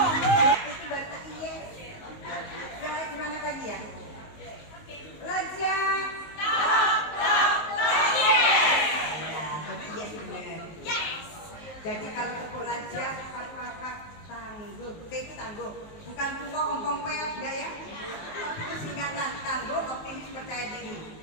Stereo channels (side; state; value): right; late; 19 ms